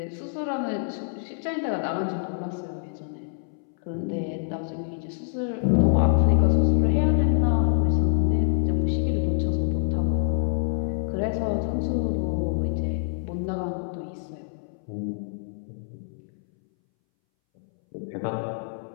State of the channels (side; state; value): right; silent; 61 dB below the other